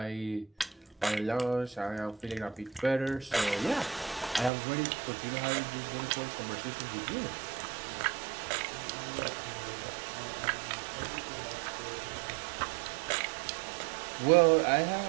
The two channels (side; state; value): left; drops out; at 4.5 s